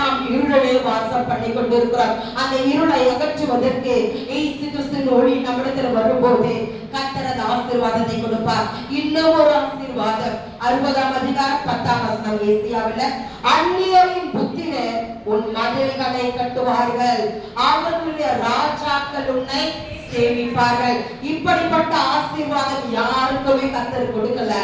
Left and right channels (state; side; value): identical; both; correlation 1.00